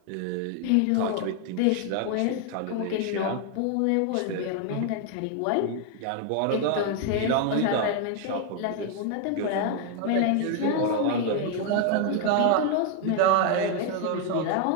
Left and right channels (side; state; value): both; different; correlation 0.00